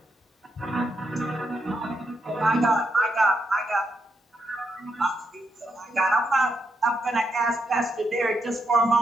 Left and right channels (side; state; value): both; normal; correlation 0.80